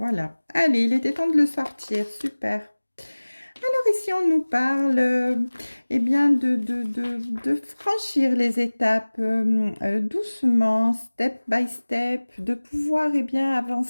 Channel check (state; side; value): inverted; both; correlation -1.00